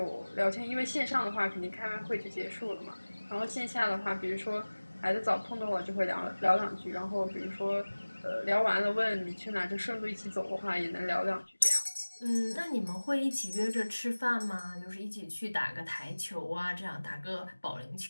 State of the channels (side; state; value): both; inverted; correlation -1.00